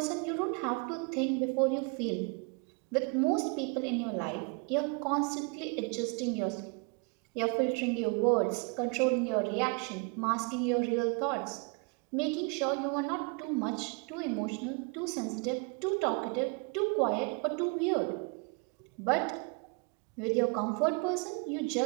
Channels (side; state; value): left; quieter; 33.4 dB